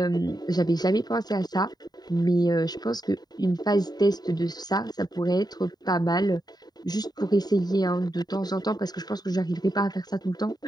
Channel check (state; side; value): late; right; 0.20 ms